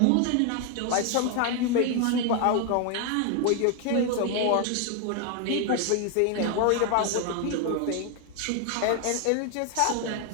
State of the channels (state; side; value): different; both; correlation 0.01